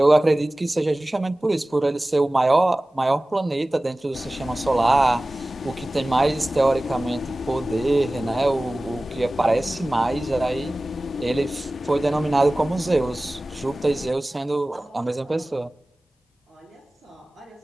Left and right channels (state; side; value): normal; both; correlation 0.97